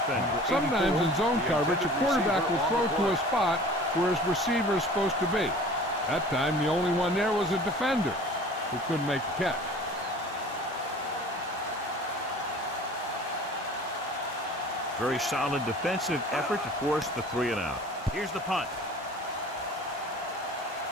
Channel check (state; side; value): normal; both; correlation 0.44